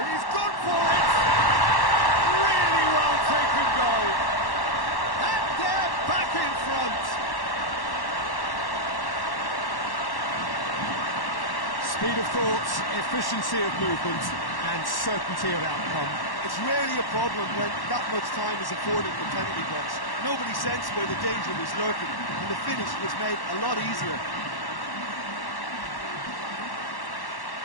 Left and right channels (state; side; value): late; right; 1.1 ms